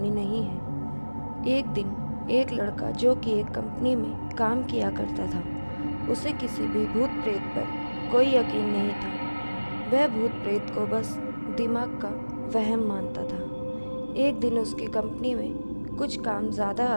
नहीं है। एक दिन एक लड़का जो कि एक कंपनी में काम किया करता था, उसे किसी भी भूत प्रेत पर कोई यकीन नहीं था। वह भूत प्रेत को बस दिमाग का वहम मानता था। एक दिन उसकी कंपनी में कुछ काम ज़्यादा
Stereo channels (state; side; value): inverted; both; correlation -1.00